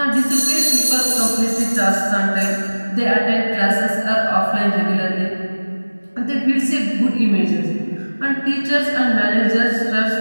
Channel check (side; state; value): both; inverted; correlation -1.00